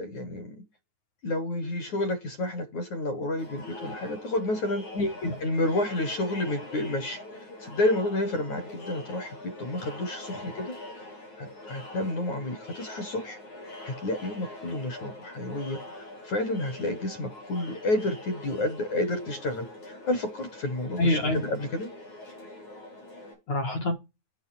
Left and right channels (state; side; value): late; right; 9.5 ms